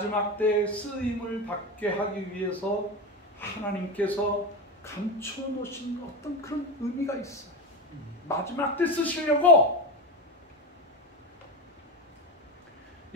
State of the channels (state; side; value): normal; both; correlation 0.19